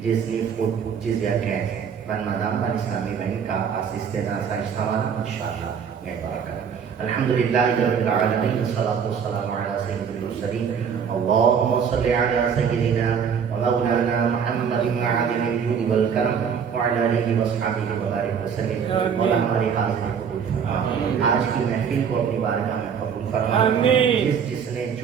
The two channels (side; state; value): left; quieter; 7.1 dB